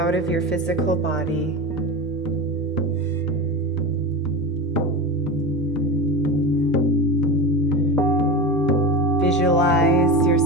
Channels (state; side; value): normal; both; correlation 0.24